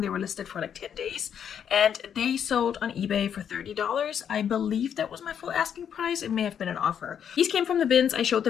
They were listed for like 10 days, and they sold on eBay for $30. I believe that was my full asking price. It may have been an offer. These came from the bins. I showed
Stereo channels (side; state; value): right; quieter; 8.4 dB